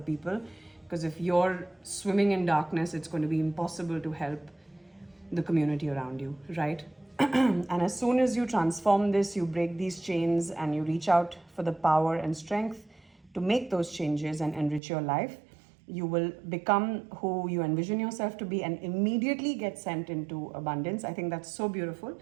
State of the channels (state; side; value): drops out; left; at 14.8 s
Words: Because if you're swimming in darkness, it's going to be impossible to help the community around you, right? And as soon as you transform this, you break these chains and you reach out for the power and strength to make those changes and enrich your life, you will become who you envision yourself to be and immediately get sent into abundance. I think that's so beautiful.